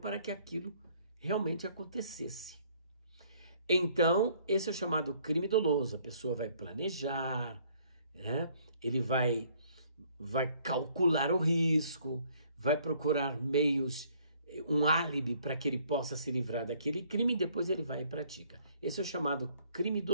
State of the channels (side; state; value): both; inverted; correlation -0.62